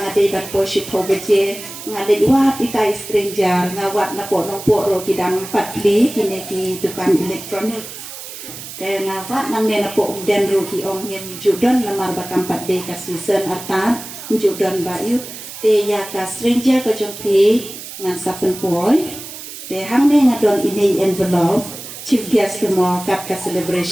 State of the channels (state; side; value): noise; right; hiss, 12 dB below the sound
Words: ngade bat poshi pobeje ngade wat ikai stranger nga wat na po nong po ro kidang patli kine ki dukan elektronik kaya ngawat nang nena po den rugi ong yang judon lamar bakampat de ka season artan judon bayu te ya ka stranger ko jompi ngan sapen poy te hang ne ngadon ini envelope chief guest mo kap ka